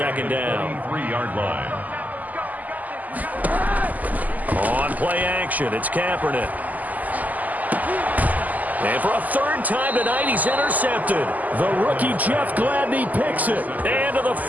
down. 3-yard line. On play action, it's Kaepernick. And for a third time tonight, he's intercepted. The rookie Jeff Gladney picks it. And to the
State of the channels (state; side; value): late; left; 0.080 ms